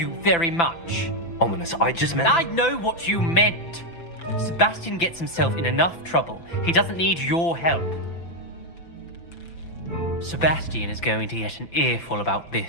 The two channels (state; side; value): late; right; 5.9 ms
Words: very much. Ominous, I just meant... I know what you meant. Sebastian gets himself in enough trouble. He doesn't need your help. Sebastian is going to get an earful about